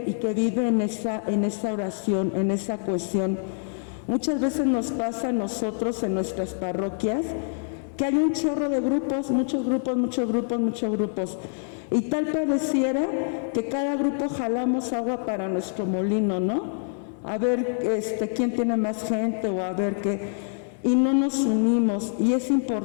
en esa oración, en esa cohesión. Muchas veces nos pasa a nosotros en nuestras parroquias que hay un chorro de grupos, muchos grupos. Y tal pareciera que cada grupo jalamos agua para nuestro molino, ¿no? A ver quién tiene más gente o a ver qué. Y no nos unimos, y es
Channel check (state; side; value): silent; right; digital silence